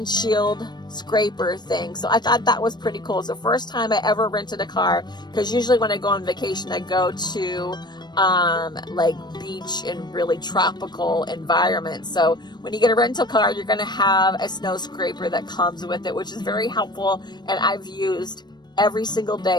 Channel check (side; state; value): right; late; 0.21 ms